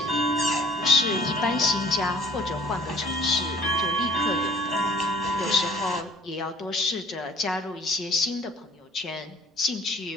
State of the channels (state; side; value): normal; both; correlation 0.53